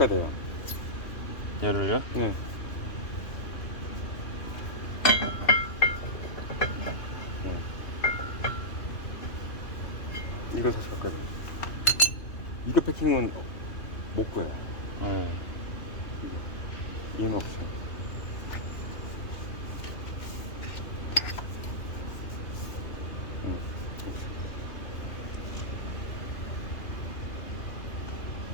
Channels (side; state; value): right; late; 2.8 ms